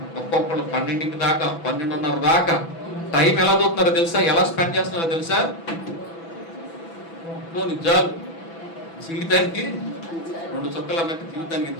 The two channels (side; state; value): right; late; 6.0 ms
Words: ఒక్కొక్కరు 12 దాకా, 12:30 దాకా టైం ఎలా చూస్తున్నారో తెలుసా? ఎలా స్పెండ్ చేస్తున్నారో తెలుసా? జాబ్ జీవితానికి 2 చుక్కలు అన్నట్టు జీవితానికి